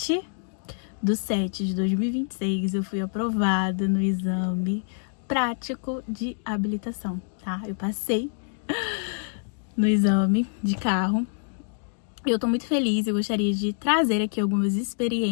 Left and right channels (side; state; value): right; silent; digital silence